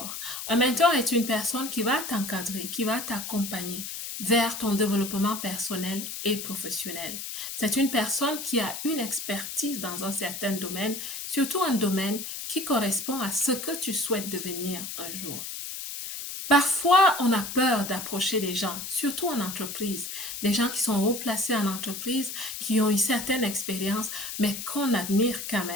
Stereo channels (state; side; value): noise; left; hiss, 7 dB below the sound